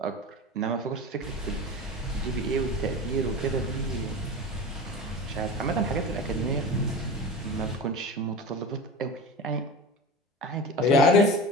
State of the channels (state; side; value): normal; both; correlation 0.31